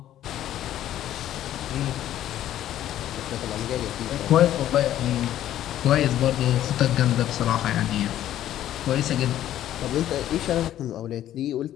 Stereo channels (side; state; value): right; quieter; 12.3 dB